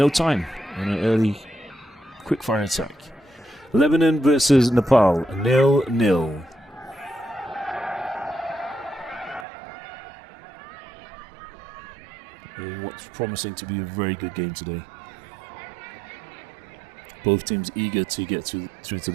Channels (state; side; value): drops out; left; at 9.5 s